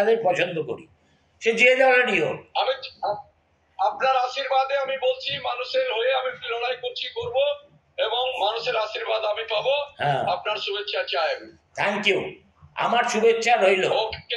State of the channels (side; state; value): both; identical; correlation 1.00